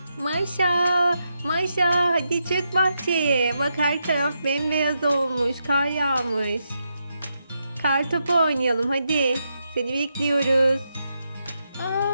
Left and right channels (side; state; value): both; inverted; correlation -0.83